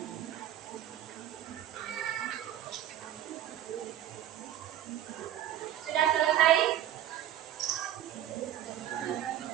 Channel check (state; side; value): quieter; left; 11.7 dB